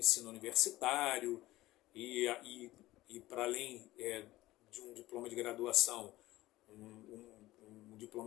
universitário e para além de um diploma de graduação, um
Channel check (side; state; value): right; quieter; 17.2 dB